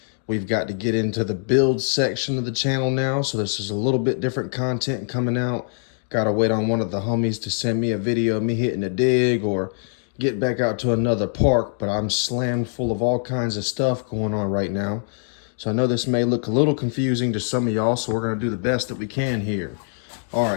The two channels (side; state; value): right; silent; 63 dB below the other